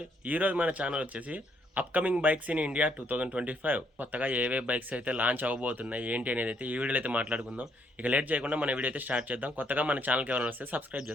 ఈరోజు మన channel వచ్చేసి అప్కమింగ్ బైక్స్ ఇన్ ఇండియా 2025 కొత్తగా ఏవే బైక్స్ అయితే లాంచ్ అవ్వబోతున్నాయి ఏంటి అనేది అయితే ఈ వీడియోలో అయితే మాట్లాడుకుందాం. ఇక లేట్ చేయకుండా మన వీడియో అయితే స్టార్ట్ చేద్దాం. కొత్తగా మన ఛానల్కి ఎవరైనా వస్తే సబ్స్క్రైబ్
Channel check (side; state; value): both; normal; correlation 0.71